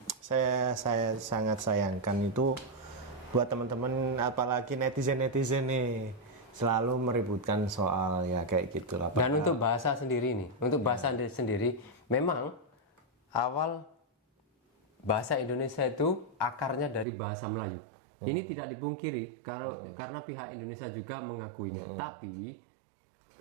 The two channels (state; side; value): drops out; left; at 17.1 s